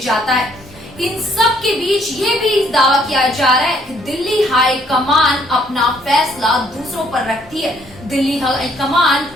है। इन सब के बीच ये भी दावा किया जा रहा है कि दिल्ली हाई कमान अपना फैसला दूसरों पर रखती है। दिल्ली हाई कमान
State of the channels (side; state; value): both; normal; correlation 0.66